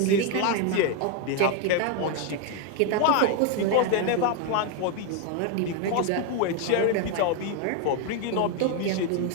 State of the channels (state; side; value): different; both; correlation 0.01